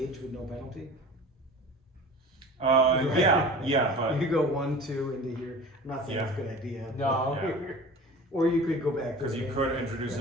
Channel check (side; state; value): both; normal; correlation 0.39